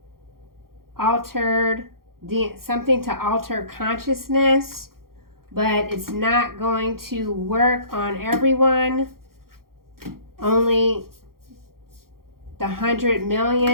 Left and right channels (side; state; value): left; late; 0.93 ms